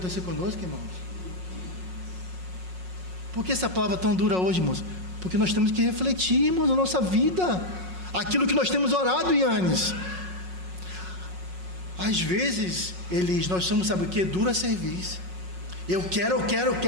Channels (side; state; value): left; late; 5.5 ms